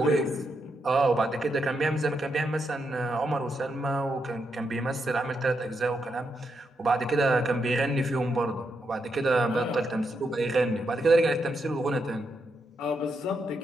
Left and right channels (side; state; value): both; normal; correlation 0.82